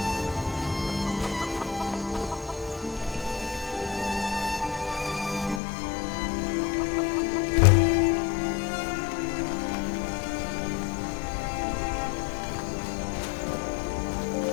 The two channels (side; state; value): right; drops out; at 5.6 s